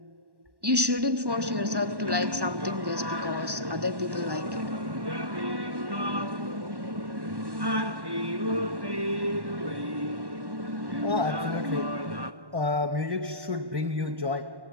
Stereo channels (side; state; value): left; late; 1.1 ms